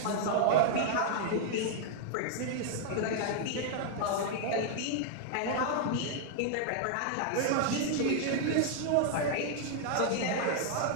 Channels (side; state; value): both; different; correlation 0.00